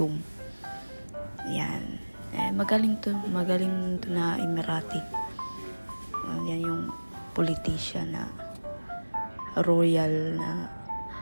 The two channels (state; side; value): inverted; both; correlation -1.00